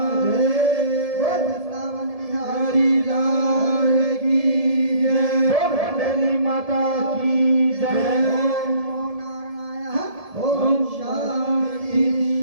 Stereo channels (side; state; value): left; late; 1.7 ms